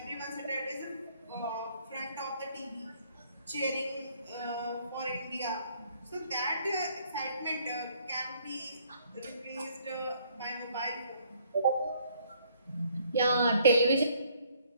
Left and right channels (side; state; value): both; inverted; correlation -0.64